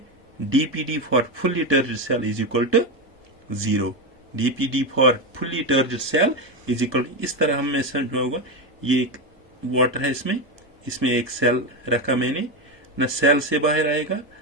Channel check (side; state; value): both; normal; correlation 0.12